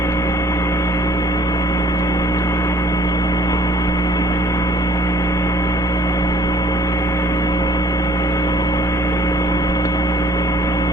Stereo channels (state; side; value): normal; both; correlation 0.57